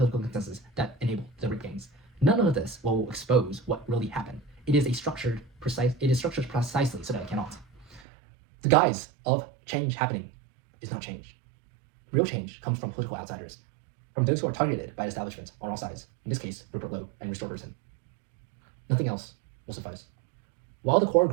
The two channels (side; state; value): left; drops out; at 8.0 s